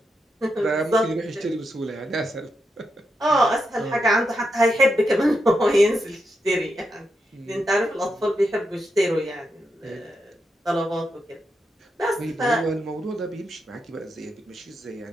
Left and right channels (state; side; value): normal; both; correlation 0.85